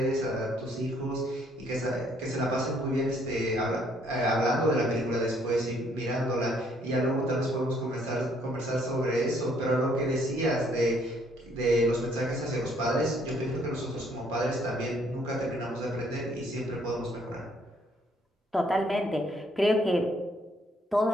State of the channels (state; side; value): normal; both; correlation 0.66